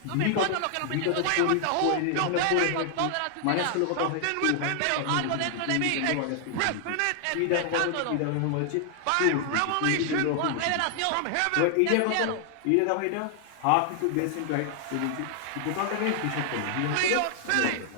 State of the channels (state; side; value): different; both; correlation 0.00